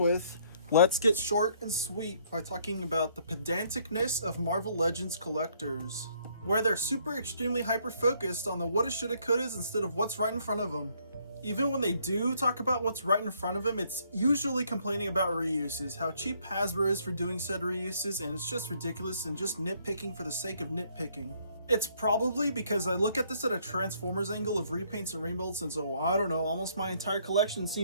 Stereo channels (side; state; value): both; inverted; correlation -0.67